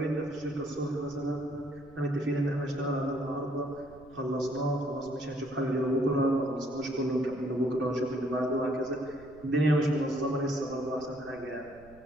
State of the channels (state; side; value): noise; right; rumble, 24 dB below the sound